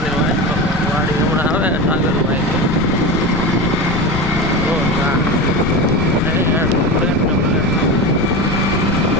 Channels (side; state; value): left; noise; rumble, 9 dB below the sound